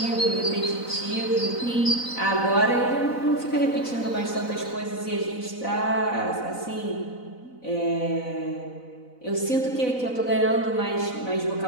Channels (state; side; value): late; right; 4.0 ms